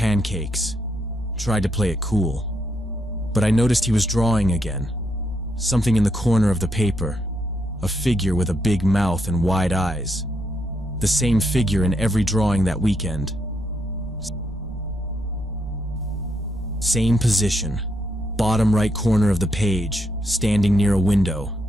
Tried to play it cool. But I noticed he was drawing again. Something in the corner of the paper. A figure with a big mouth and wide eyes. The same figure in every drawing that weekend. Same position. Bottom right corner of the page, standing near a window.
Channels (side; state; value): both; normal; correlation 0.78